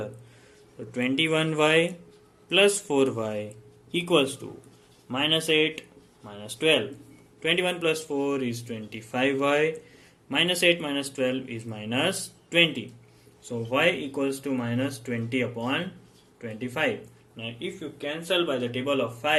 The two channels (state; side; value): identical; both; correlation 1.00